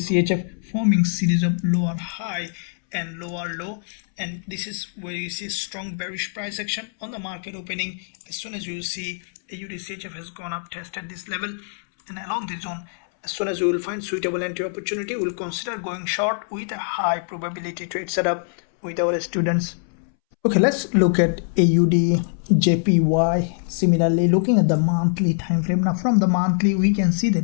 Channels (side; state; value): right; silent; 63 dB below the other